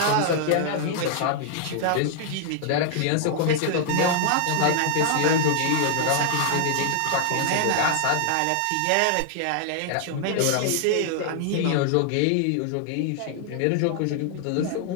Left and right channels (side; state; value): both; different; correlation 0.00